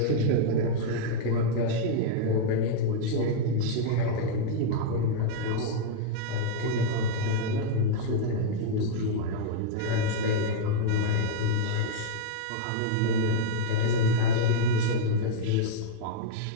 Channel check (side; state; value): both; different; correlation -0.01